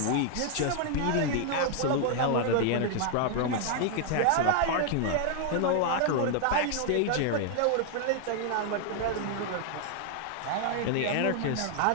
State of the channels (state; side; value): different; both; correlation 0.00